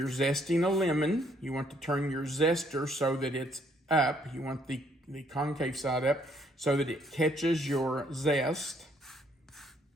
zesting a lemon, you want to turn your zester so that it's up. You want the concave side up so that it catches your zest.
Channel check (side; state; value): both; normal; correlation 0.68